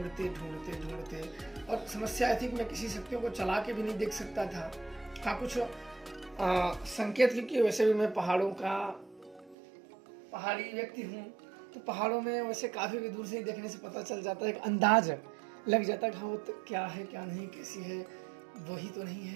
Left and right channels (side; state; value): left; drops out; at 9.6 s